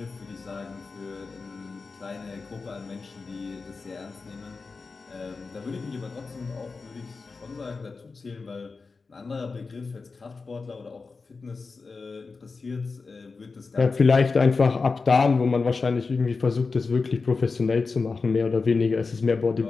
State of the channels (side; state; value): right; quieter; 4.3 dB